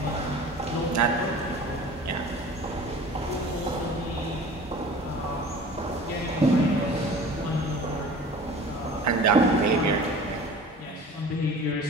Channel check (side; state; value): both; normal; correlation 0.42